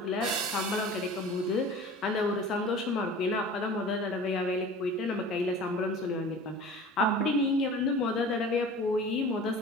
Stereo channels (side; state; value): both; normal; correlation 0.40